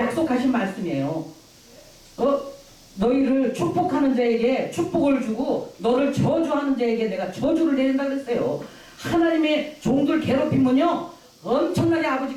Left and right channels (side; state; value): both; identical; correlation 1.00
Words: 말씀이에요. 너희를 축복하는 자에게 축복을 주고 너를 저주하는 자에게 내가 저주를 내린다 그랬어요. 하나님의 종들 괴롭히면요. 엄청나게